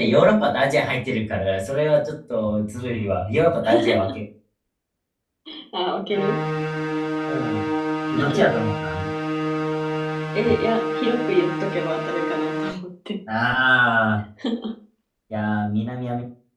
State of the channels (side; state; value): both; identical; correlation 1.00